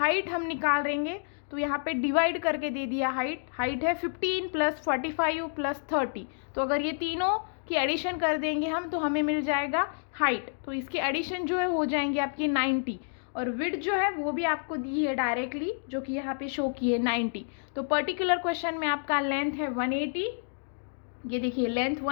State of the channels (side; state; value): right; silent; digital silence